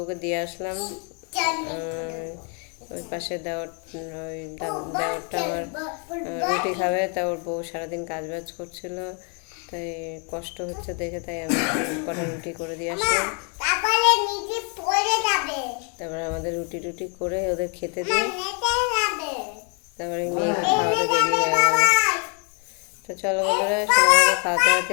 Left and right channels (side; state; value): right; quieter; 37.6 dB